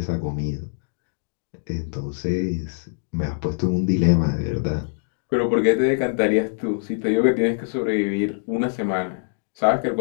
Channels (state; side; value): silent; right; digital silence